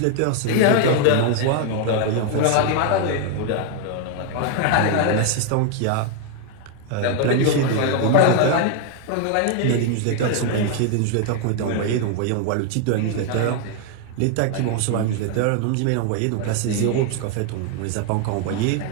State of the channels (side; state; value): both; different; correlation 0.00